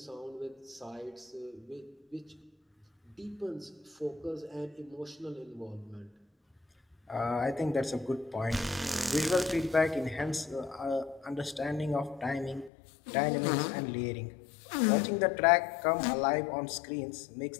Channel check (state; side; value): drops out; right; at 12.7 s